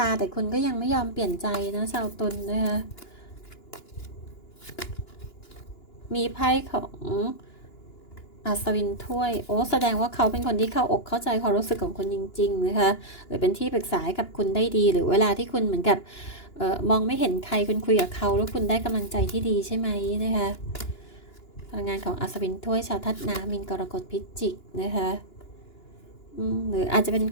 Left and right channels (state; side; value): late; right; 2.9 ms